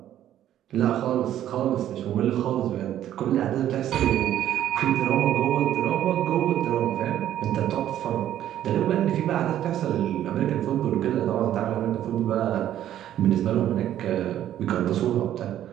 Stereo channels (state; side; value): quieter; left; 11.7 dB